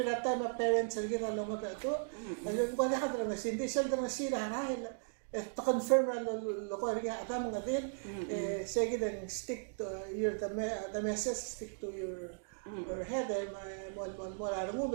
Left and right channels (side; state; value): left; silent; digital silence